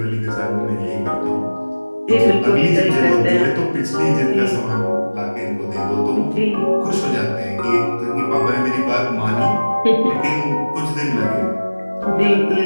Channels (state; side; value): inverted; both; correlation -1.00